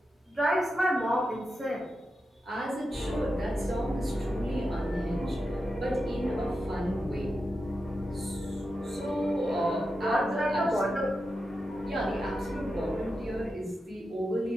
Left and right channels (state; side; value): normal; both; correlation 0.89